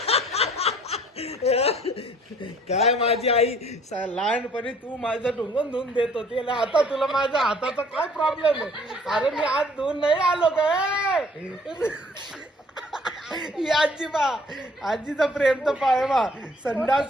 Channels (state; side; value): normal; both; correlation 0.57